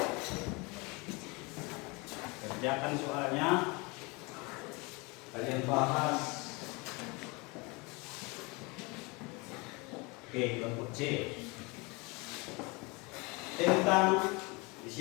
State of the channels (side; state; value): right; quieter; 27.4 dB